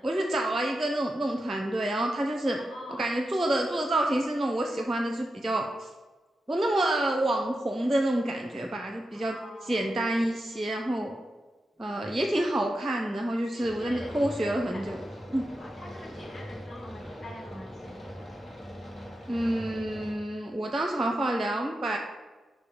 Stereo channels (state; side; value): normal; both; correlation 0.89